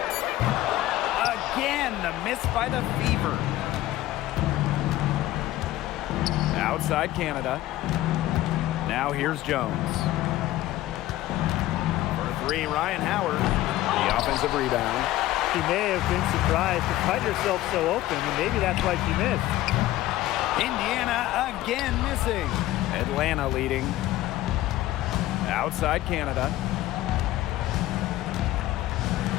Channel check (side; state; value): right; quieter; 15.5 dB